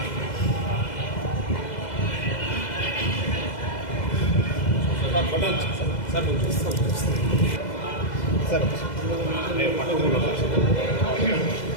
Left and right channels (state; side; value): late; right; 2.0 ms